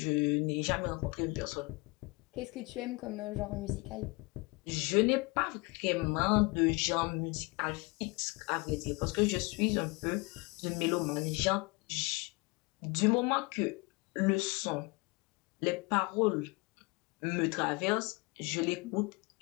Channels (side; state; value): right; quieter; 26.8 dB